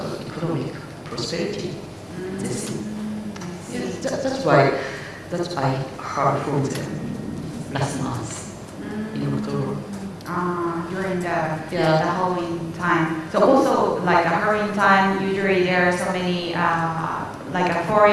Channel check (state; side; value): identical; both; correlation 1.00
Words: economic prosperity. That's why I heard from them last month in October. During the Halloween time. So also like a Halloween time, usually there are so many like a